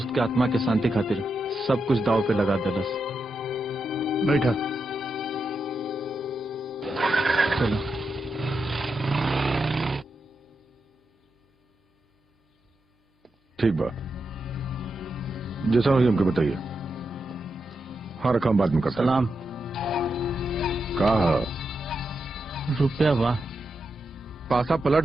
के आत्मा के शांति खातिर सब कुछ दाव पे लगा देलस। बैठा। चलो। ठीक बा, जैसा हुई हमको बताइए। हाँ, रकम बाद में करता। सलाम। कहा रुपया बा? पासा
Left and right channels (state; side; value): normal; both; correlation 0.86